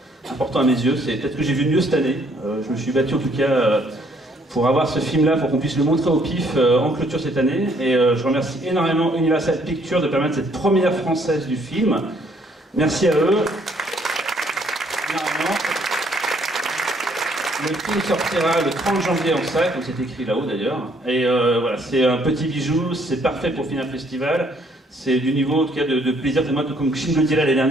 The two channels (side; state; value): both; normal; correlation 0.66